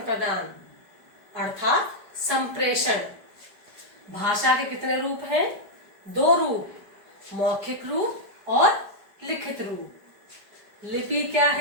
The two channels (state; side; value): late; left; 5.0 ms